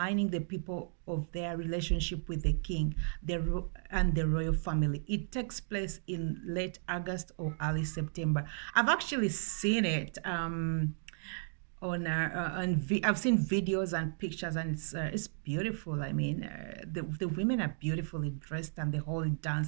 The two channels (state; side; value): silent; left; digital silence